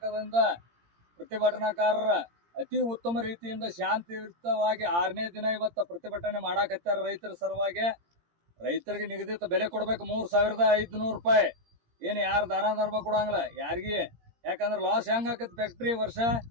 ಪ್ರತಿಭಟನಾಕಾರರ ಅತಿ ಉತ್ತಮ ರೀತಿಯಿಂದ ಶಾಂತಿಯುತವಾಗಿ 6ನೇ ದಿನ ಇವತ್ತ ಪ್ರತಿಭಟನೆ ಮಾಡಾಕತ್ತಾರ. ರೈತರ ಸಲುವಾಗಿ ರೈತರಿಗೆ ನಿಗದಿತ ಬೆಲೆ ಕೊಡ್ಬೇಕು 3,500 ರೂಪಾಯಿ. ಏನು ಯಾರು ದಾನ ಧರ್ಮ ಕೊಡಂಗಿಲ್ಲ ಯಾರಿಗೆ, ಯಾಕಂದ್ರೆ ಲಾಸ್ ಹೆಂಗ್ ಆಕತಿ. ಫ್ಯಾಕ್ಟ್ರಿ ವರ್ಷ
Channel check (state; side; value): late; left; 17 ms